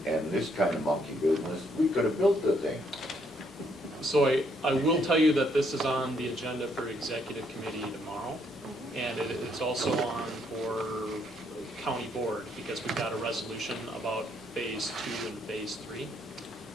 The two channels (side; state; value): both; normal; correlation 0.71